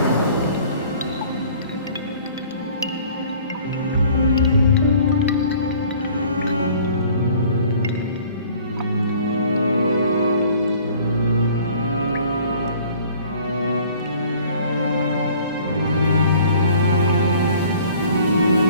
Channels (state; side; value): inverted; both; correlation -0.52